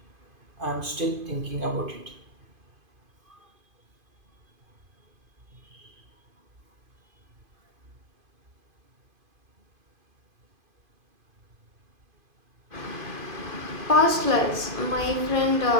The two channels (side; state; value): left; late; 2.5 ms